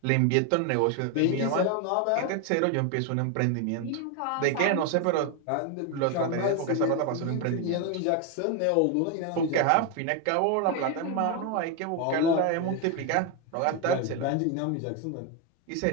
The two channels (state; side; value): different; both; correlation 0.01